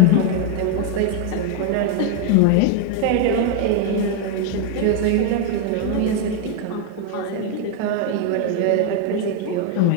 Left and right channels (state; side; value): different; both; correlation 0.01